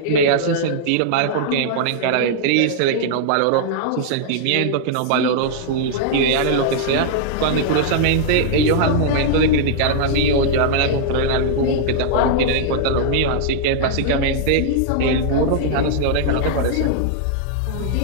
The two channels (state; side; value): different; both; correlation -0.01